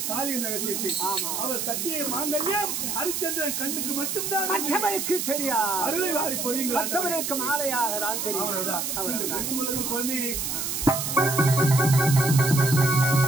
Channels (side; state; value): right; noise; hiss, 2 dB below the sound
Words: தாலியின் ரகசியத்தை. அவர் கட்டிய மாங்கல்யம் ஹரிச்சந்திரன் கண்ணுக்கு மட்டும்தான் மற்றவருக்கு தெரியாது. அருளை வாரி பொழியுங்கள். மற்றவருக்கு மாலையாக தான் தெரியும். குழந்தையை